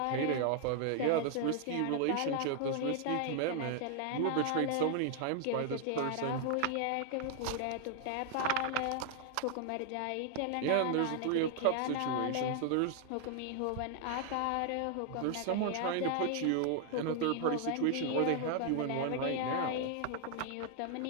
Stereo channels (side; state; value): both; different; correlation 0.00